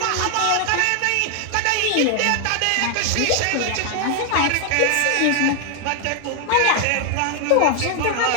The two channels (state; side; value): different; both; correlation 0.00